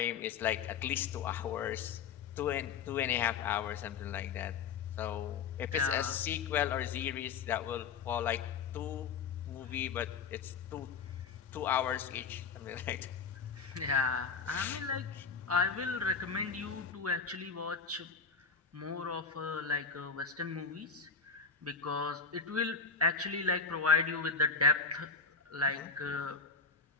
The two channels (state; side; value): quieter; right; 5.4 dB